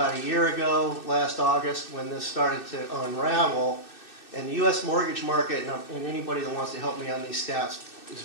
a year ago, last August, when this started to unravel, and the U.S. mortgage market, and anybody that wants to help me on these stats is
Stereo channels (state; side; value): late; right; 2.6 ms